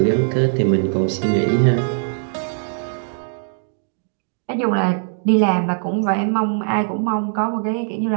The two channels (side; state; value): left; silent; digital silence